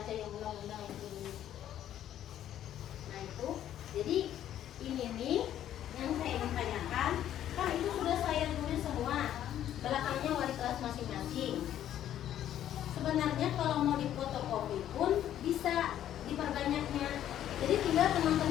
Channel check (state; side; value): quieter; right; 11.3 dB